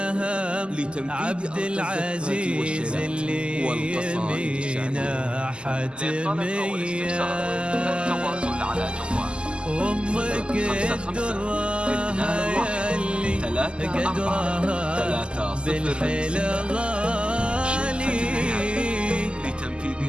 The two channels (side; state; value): left; late; 0.050 ms